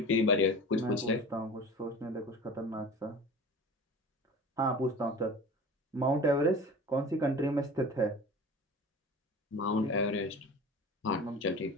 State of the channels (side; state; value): both; normal; correlation 0.37